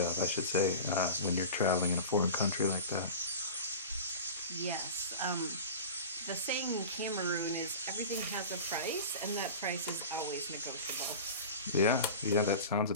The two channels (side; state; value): both; inverted; correlation -0.33